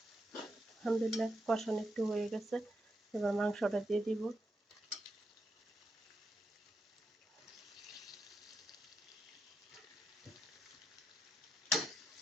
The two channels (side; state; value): both; normal; correlation 0.84